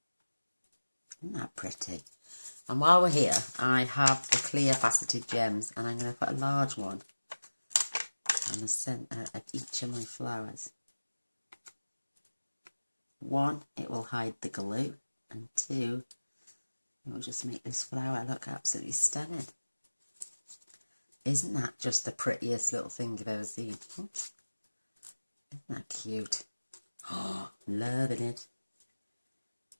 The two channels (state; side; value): inverted; both; correlation -1.00